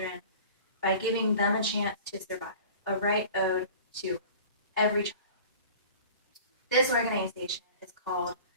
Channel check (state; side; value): inverted; both; correlation -0.42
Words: by giving them a chance to survive, a right owed to every child. This organization is called